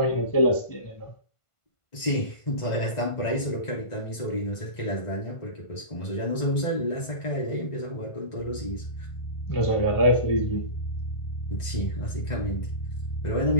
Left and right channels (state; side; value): late; right; 1.5 ms